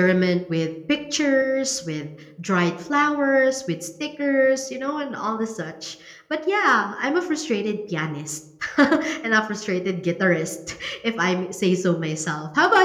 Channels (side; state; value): both; identical; correlation 1.00